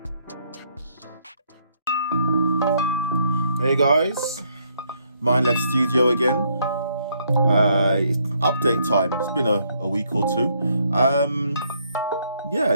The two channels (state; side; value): inverted; both; correlation -0.71